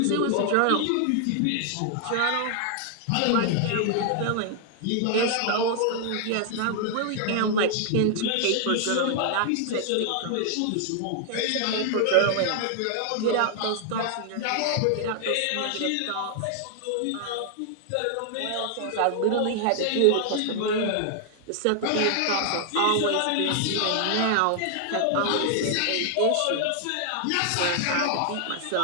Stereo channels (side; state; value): both; different; correlation 0.00